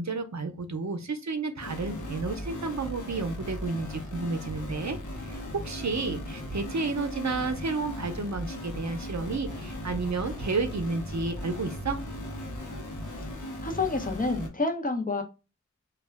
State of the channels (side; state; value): both; normal; correlation 0.30